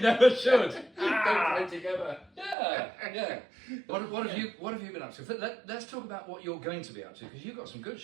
should. Don't play together. Yeah. What have you been up to? Let's talk about what you're going to be up to, because you've got some good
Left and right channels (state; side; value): drops out; left; at 2.6 s